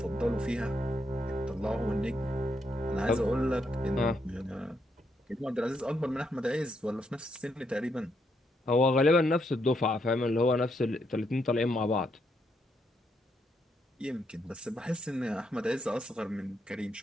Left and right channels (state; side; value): normal; both; correlation 0.78